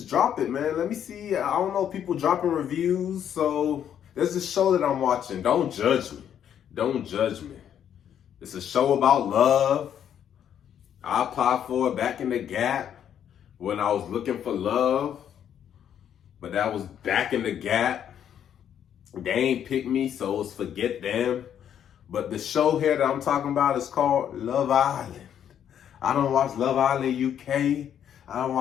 drop it, man. Let me see. I don't know people dropping reviews. So there's this show that I'm watching. Don't judge me. Don't judge me. It's a show about love. I applied for it back in the gap when I was looking for love. But that was back in the gap. They ain't pick me, so it's forget them. But the show here that I'm talking about is called Love Island. I don't watch Love Island UK. I don't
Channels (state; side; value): quieter; right; 9.4 dB